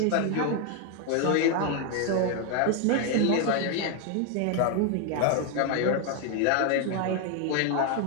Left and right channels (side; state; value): both; different; correlation 0.00